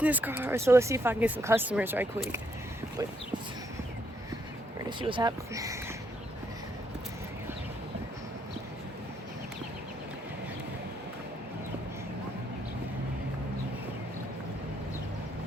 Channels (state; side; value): normal; both; correlation 0.74